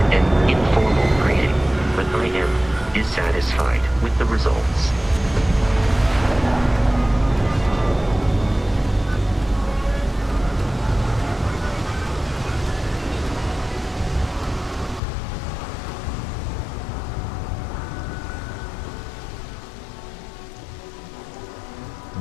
an informal greeting, but I am dissatisfied with the results.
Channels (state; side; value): drops out; right; at 15.0 s